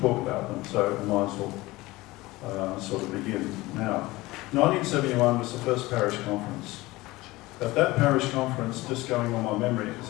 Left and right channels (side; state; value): right; quieter; 19.9 dB